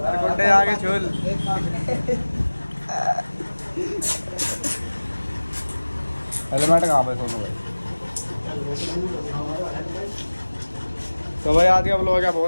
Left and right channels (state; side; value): inverted; both; correlation -1.00